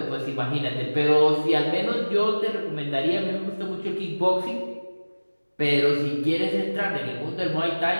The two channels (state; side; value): inverted; both; correlation -1.00